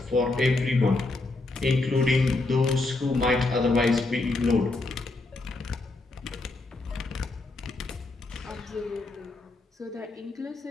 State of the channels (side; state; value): right; quieter; 3.1 dB